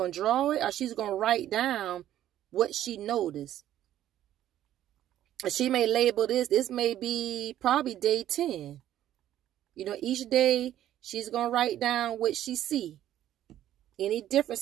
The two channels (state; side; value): quieter; left; 12.2 dB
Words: to draw it or she's going to write down what she noticed. She may label this. This may be probably day 10. You know, each day she's going to write down what she see. Any